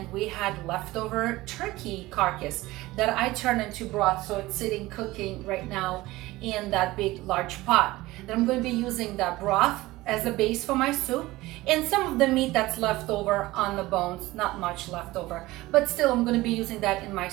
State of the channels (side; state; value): left; quieter; 18.8 dB